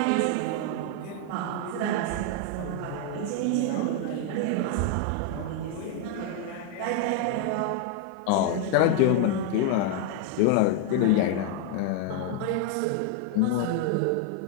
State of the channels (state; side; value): different; both; correlation 0.00